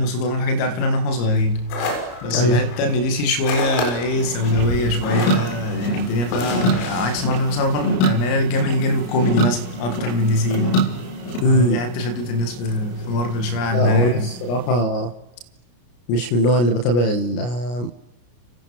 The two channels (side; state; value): right; late; 33 ms